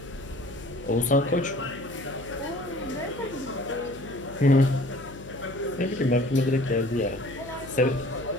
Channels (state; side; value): noise; left; hum, 17 dB below the sound